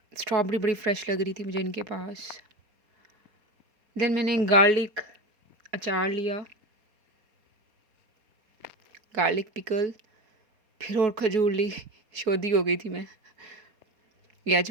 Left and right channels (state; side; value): late; left; 4.3 ms